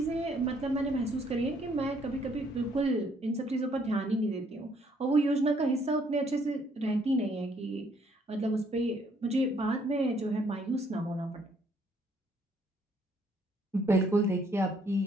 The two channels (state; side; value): normal; both; correlation 0.66